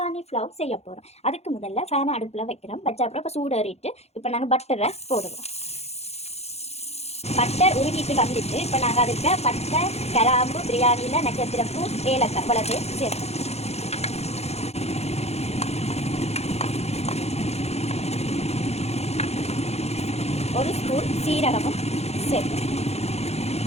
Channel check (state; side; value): late; right; 0.31 ms